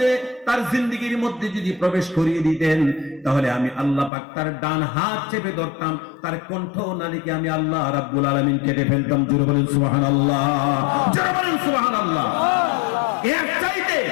তার জিন্দেগীর মধ্যে যদি প্রবেশ করিয়ে দিতেন, তাহলে আমি আল্লাহ পাক তার ডান হাত চেপে ধরতাম, তার কণ্ঠ নালীকে আমি আল্লাহ রাব্বুল আলামিন কেটে ফেলতাম। জোরে বলেন সুবহানাল্লাহ, জোরে বলেন সুবহানাল্লাহ। এর চাইতে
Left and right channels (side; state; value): right; drops out; at 4.1 s